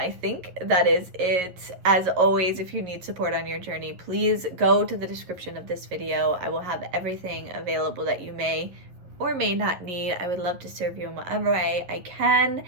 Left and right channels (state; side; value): late; left; 11 ms